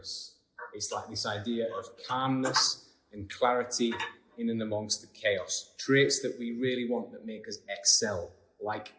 It's like this idea of calmness and clarity in and amongst the chaos. Traits that we really want that make us excel like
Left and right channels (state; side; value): identical; both; correlation 1.00